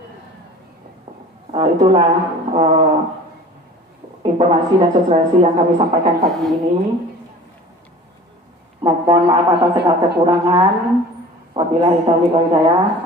Itulah informasi dan sosialisasi yang kami sampaikan pagi ini. Mohon maaf atas segala kekurangan. Wabillahi taufiq wal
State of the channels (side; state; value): both; normal; correlation 0.42